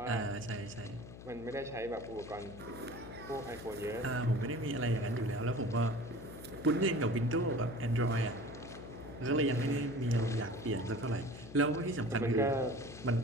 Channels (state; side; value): noise; left; hum, 14 dB below the sound